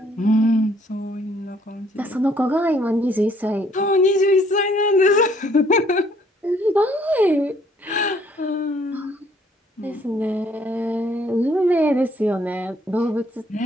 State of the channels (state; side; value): normal; both; correlation 0.64